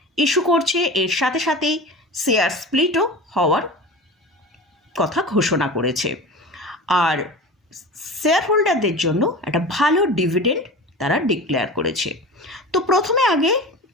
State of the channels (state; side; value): normal; both; correlation 0.32